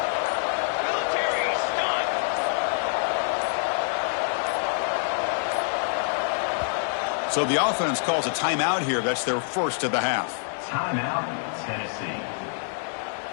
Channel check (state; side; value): silent; right; digital silence